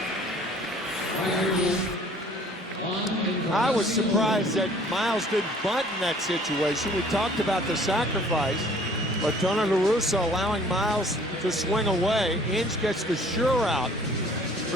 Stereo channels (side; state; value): both; normal; correlation 0.54